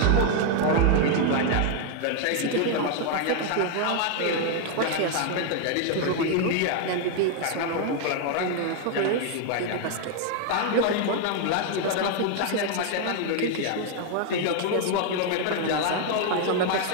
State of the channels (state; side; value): different; both; correlation 0.00